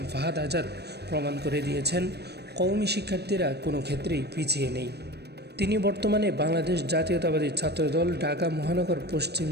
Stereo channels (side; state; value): left; late; 0.48 ms